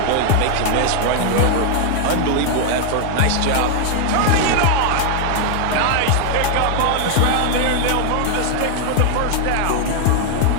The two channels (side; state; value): both; different; correlation 0.00